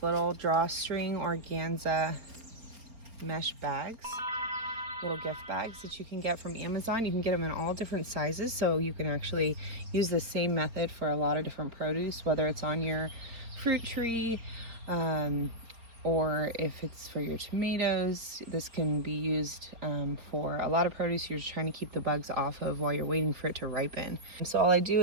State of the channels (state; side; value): late; left; 4.5 ms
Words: little drawstring organza mesh bags, little gift bags that you can get from Amazon. You can get them in all different sizes, so you can actually use the same method for a lot of different produce, whether it's on your fruit tree, or if it's for your tomatoes. This can be used for a lot of produce you're just trying to keep the bugs off of while you're waiting for it to ripen. So all I do